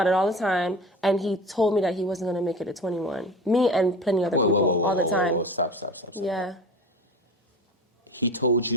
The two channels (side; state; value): both; normal; correlation 0.35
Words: it all the time, and he told me that he wasn't going to make it at 21. Me and plenty other people all the time. Stop. Yeah. He told